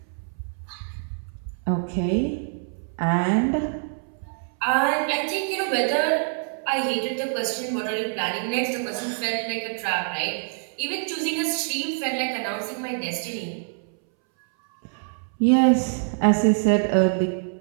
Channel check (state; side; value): silent; left; 62 dB below the other